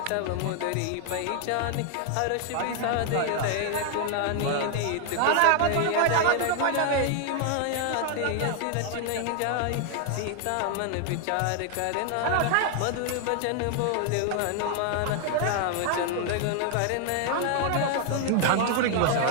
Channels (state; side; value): different; both; correlation 0.00